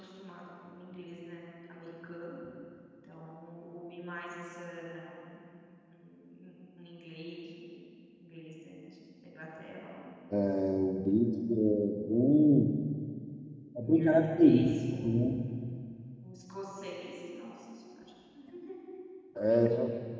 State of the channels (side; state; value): both; identical; correlation 1.00